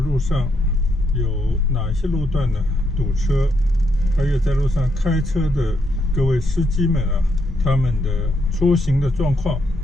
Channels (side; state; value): both; normal; correlation 0.78